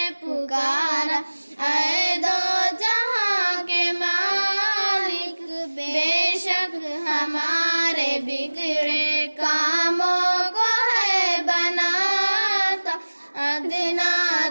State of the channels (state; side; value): inverted; both; correlation -1.00